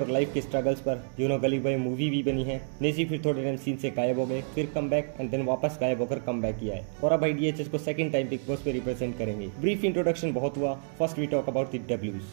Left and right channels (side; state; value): left; silent; digital silence